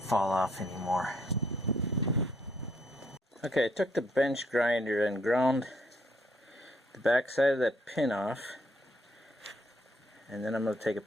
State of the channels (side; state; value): both; normal; correlation 0.70